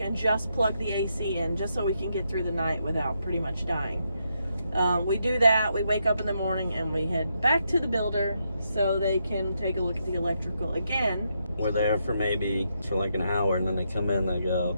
and just plug the AC in, just so we can get through the night without pretty much dying. We do that, we wake up in the morning, and we head back to the builder so they can take a look at the electrical again. We're there for like an hour, and then they come in and they go,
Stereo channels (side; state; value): both; inverted; correlation -0.80